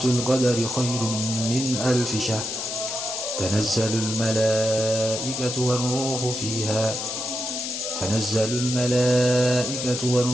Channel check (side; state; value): left; noise; hiss, 4 dB below the sound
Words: القدر خير من ألف شهر تنزل الملائكة